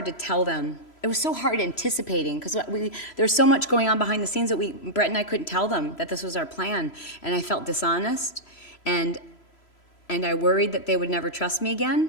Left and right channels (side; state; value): right; late; 3.0 ms